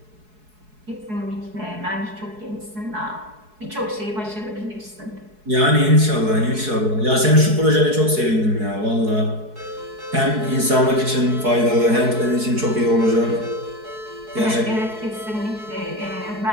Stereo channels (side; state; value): left; late; 4.7 ms